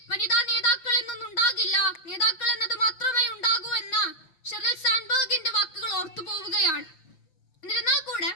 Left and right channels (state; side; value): late; right; 5.8 ms